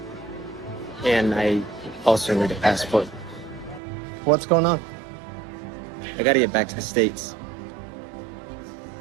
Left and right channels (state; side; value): drops out; left; at 3.8 s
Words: And I also need a passport. What's going on? I gotta get back to the States.